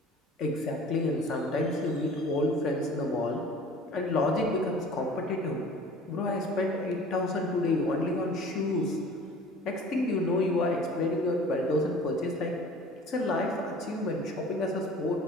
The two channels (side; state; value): both; normal; correlation 0.45